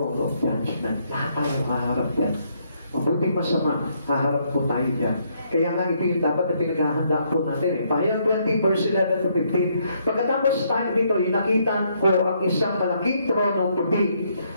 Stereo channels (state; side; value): inverted; both; correlation -0.72